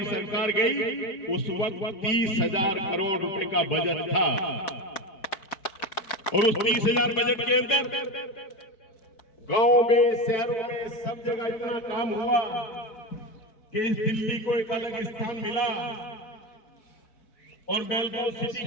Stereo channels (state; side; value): late; right; 4.6 ms